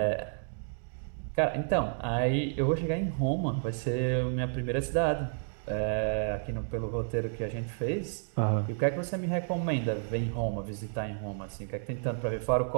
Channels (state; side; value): silent; left; digital silence